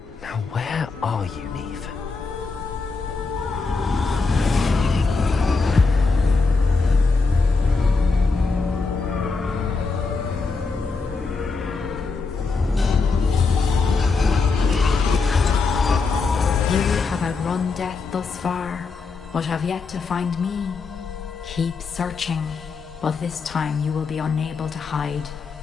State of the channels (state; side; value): quieter; right; 4.3 dB